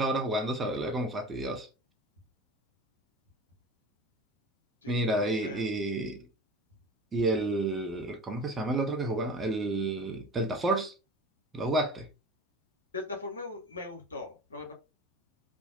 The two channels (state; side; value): normal; both; correlation 0.36